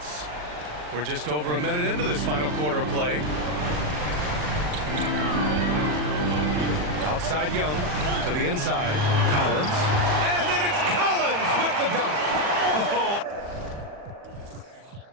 We're just over a minute into this final quarter of play. Outside Young to the inside. Collins. And then it's Collins with the dunk.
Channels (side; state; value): left; late; 40 ms